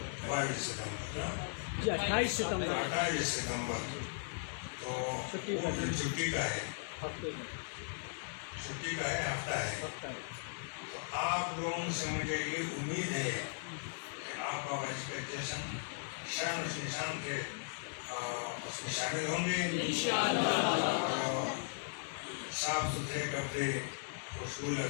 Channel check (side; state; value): right; silent; digital silence